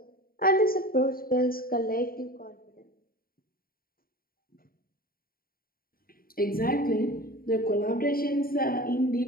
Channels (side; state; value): right; late; 0.43 ms